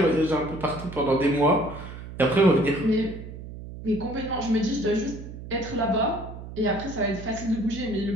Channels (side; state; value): right; noise; hum, 12 dB below the sound